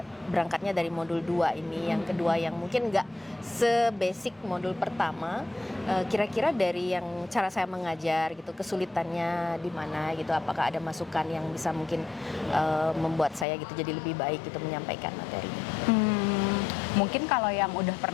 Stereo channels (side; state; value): right; drops out; at 13.5 s